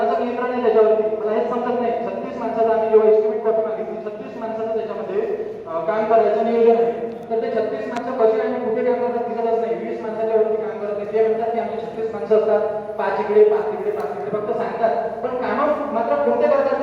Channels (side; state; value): both; identical; correlation 1.00